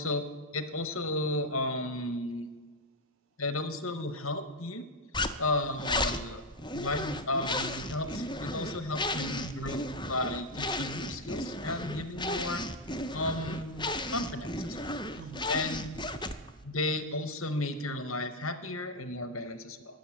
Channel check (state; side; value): normal; both; correlation 0.04